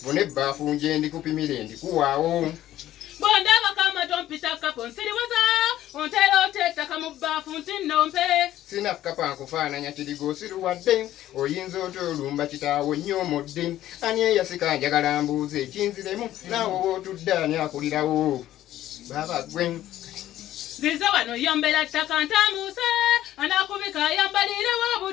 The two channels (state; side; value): quieter; right; 13.4 dB